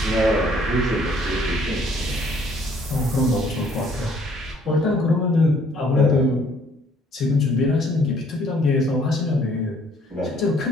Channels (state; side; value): normal; both; correlation 0.61